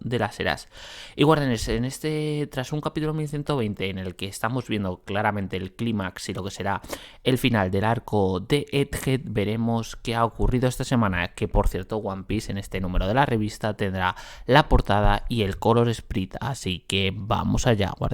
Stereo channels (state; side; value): identical; both; correlation 1.00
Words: de las eras. Y guardianes, tras un capítulo 1120 en el que estamos viendo claramente el clímax y lo que será el final del arco de Egghead, veremos qué ha ocurrido esta semana, que por cierto One Piece en este número de la revista tendrá la portada y el color sprite, así que vamos allá,